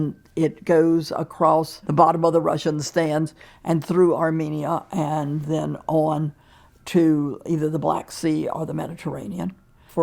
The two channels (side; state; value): both; identical; correlation 1.00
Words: it goes across the bottom of the Russian stands and through Armenia and then on to either the Black Sea or the Mediterranean.